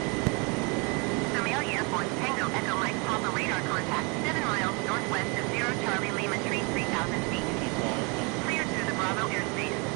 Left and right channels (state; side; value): quieter; left; 31.1 dB